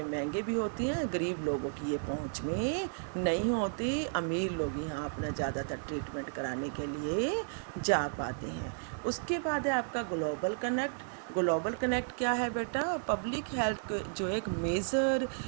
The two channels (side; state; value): left; silent; digital silence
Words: महंगे भी होती हैं, गरीब लोगों की ये पहुंच में नहीं होती, अमीर लोग यहाँ अपना ज़्यादातर ट्रीटमेंट कराने के लिए जा पाते हैं। उसके बाद है आपका ग्लोबल कनेक्ट। ग्लोबल कनेक्ट क्या है बेटा, पब्लिक हेल्थ जो एक मेजर